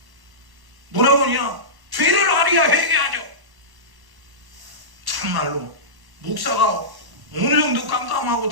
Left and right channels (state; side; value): late; left; 1.1 ms